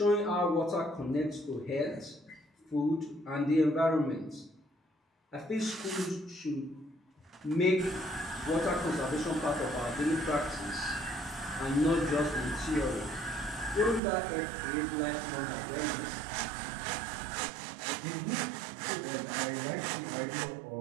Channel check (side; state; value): left; drops out; at 14.0 s